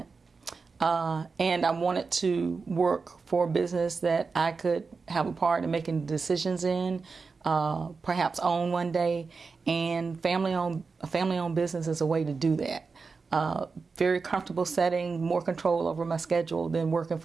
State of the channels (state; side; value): quieter; left; 4.6 dB